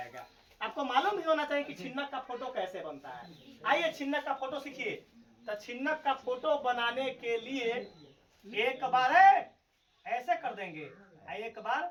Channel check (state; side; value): identical; both; correlation 1.00